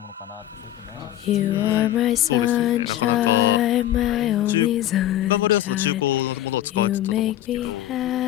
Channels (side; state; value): right; quieter; 13.2 dB